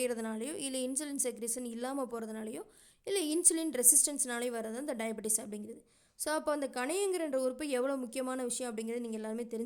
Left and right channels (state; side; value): identical; both; correlation 1.00